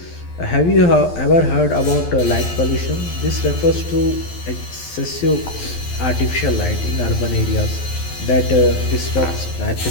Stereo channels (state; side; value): late; right; 12 ms